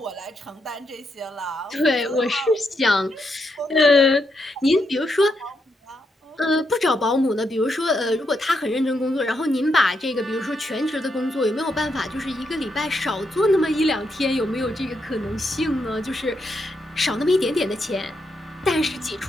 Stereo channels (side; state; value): both; normal; correlation 0.81